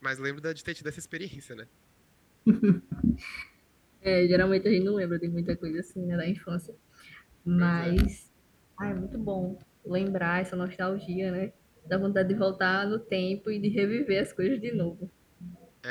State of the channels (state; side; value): identical; both; correlation 1.00